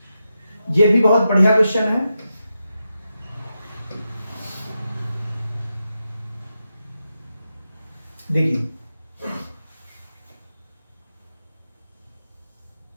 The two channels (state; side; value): inverted; both; correlation -0.88